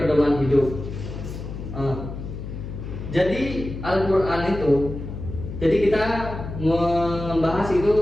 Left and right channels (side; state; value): left; noise; hum, 8 dB below the sound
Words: pedoman hidup. Jadi Al-Quran itu, jadi kita membahas itu